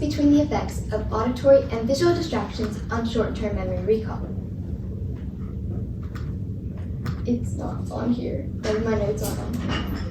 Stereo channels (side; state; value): both; identical; correlation 1.00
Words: the effects of auditory and visual distractions on short-term memory recall. It's not on here. Maybe my notes aren't on here.